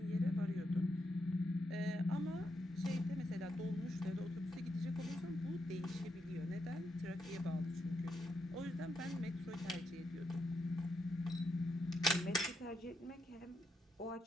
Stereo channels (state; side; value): normal; both; correlation 0.81